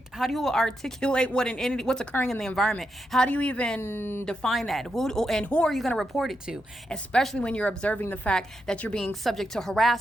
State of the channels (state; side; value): normal; both; correlation 0.84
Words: what an entity, what's occurring in the environment? How do you even define that? Who are you going to report it to? Especially when you're observing the fact that you're being subject to